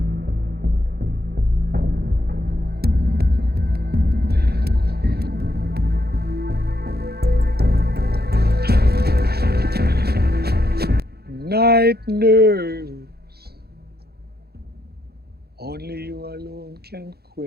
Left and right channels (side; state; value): left; late; 0.46 ms